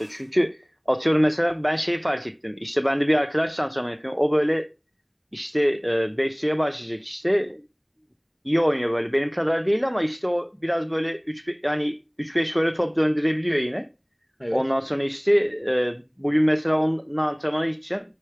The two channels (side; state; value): both; identical; correlation 1.00